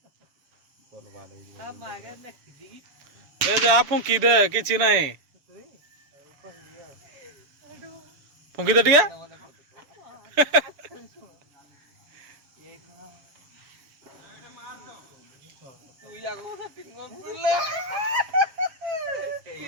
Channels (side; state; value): left; late; 7.0 ms